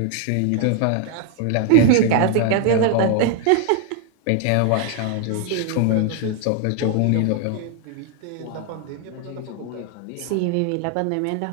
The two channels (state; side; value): different; both; correlation 0.00